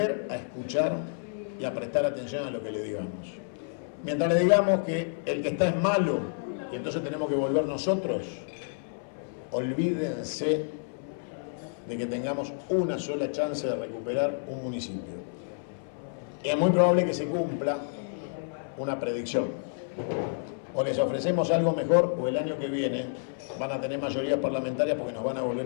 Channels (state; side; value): silent; right; 58 dB below the other